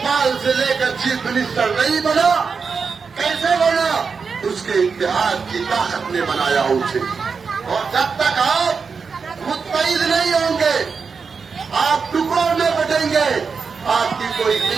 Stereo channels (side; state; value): left; quieter; 5.3 dB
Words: سے لے کر چیف منسٹر نہیں بنا؟ کیسے بنا؟ اس کے اتحاد کی طاقت نے بنایا اسے. اور جب تک آپ متحد نہیں ہوں گے، آپ ٹکڑوں میں بٹیں گے، آپ کی کوئی